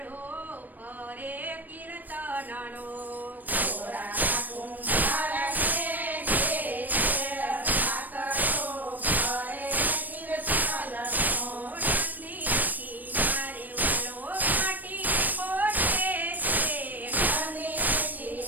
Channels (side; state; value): left; late; 0.086 ms